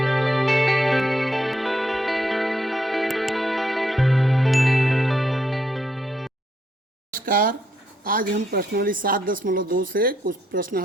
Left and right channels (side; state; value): both; normal; correlation 0.76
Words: नमस्कार। आज हम प्रश्नावली 7.2 से कुछ प्रश्न